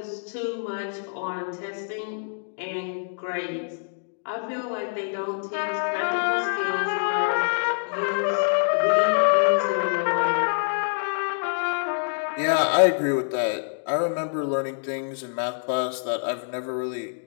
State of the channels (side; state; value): right; silent; digital silence